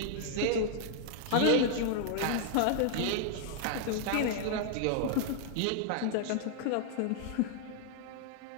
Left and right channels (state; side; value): different; both; correlation -0.01